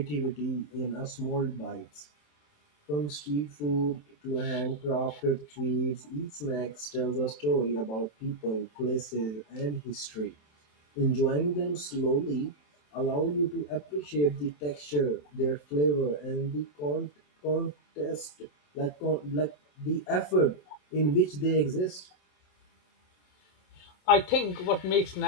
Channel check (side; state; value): right; late; 27 ms